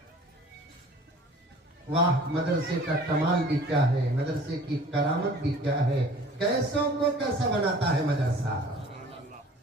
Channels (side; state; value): both; normal; correlation 0.48